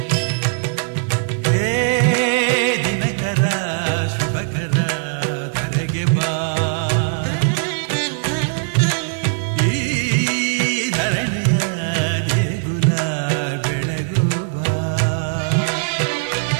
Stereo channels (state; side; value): silent; left; digital silence